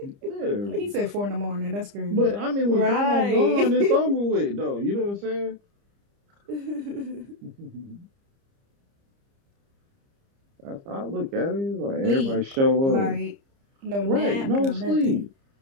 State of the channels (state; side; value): late; left; 30 ms